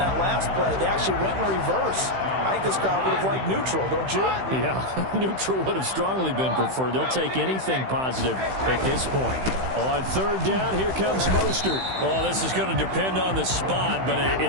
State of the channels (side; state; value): left; late; 15 ms